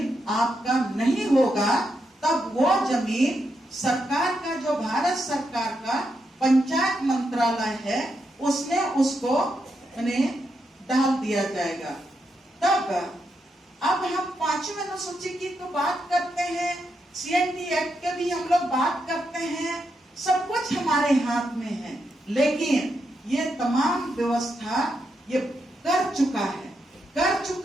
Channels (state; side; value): normal; both; correlation 0.83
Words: आपका नहीं होगा। तब वो जमीन सरकार का, जो भारत सरकार का पंचायत मंत्रालय है, उसमें उसको डाल दिया जाएगा। तब अब हम 5वीं अनुसूची की तो बात करते हैं, CNT एक्ट के भी हम लोग बात करते हैं, सब कुछ हमारे हाथ में है, लेकिन ये तमाम व्यवस्था ये कर